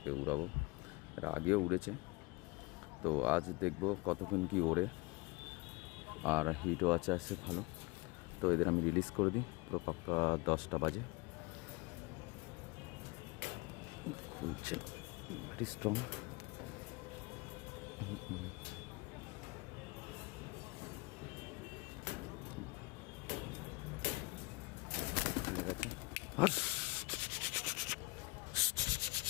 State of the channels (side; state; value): right; quieter; 24.6 dB